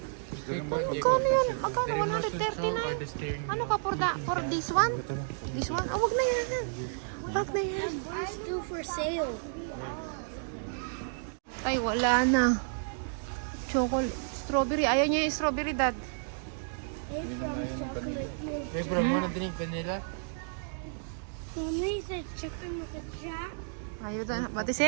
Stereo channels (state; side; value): silent; left; digital silence